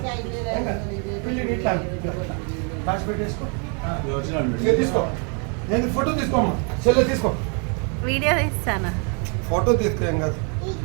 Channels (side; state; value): left; quieter; 38.4 dB